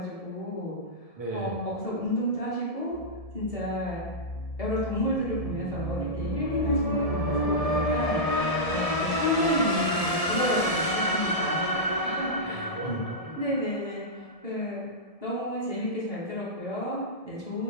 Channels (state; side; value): late; right; 1.7 ms